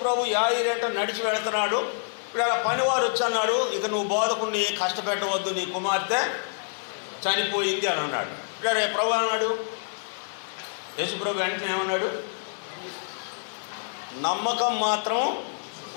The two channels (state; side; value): silent; right; digital silence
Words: ప్రభు యాయిరు ఎంట నడిచి వెళుతున్నాడు. ఇక్కడ పనివారు వచ్చి అన్నాడు, ఇక నువ్వు బోధకుడిని కష్టపెట్టవద్దు, నీ కుమార్తె చనిపోయింది అని అన్నాడు. ఇక్కడ ప్రభు అన్నాడు, యేసు ప్రభు వెంటనే ఏమన్నాడు, నమ్మకం మాత్రం